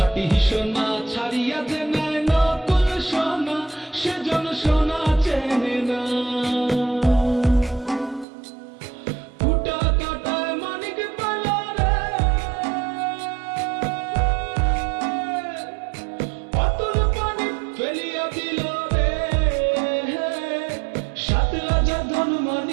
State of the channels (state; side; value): drops out; left; at 8.2 s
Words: সোনা ছাড়িয়া যে নেয় নকল সোনা, সেজন সোনা চেনে না। ফুটা কাটায় মানিক পেল রে, অতুল পানি ফেলিয়া দিল রে, সাত রাজা ধন